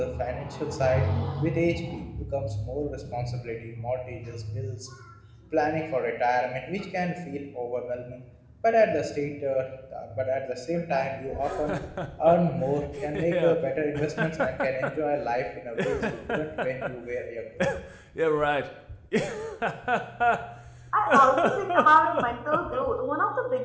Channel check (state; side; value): identical; both; correlation 1.00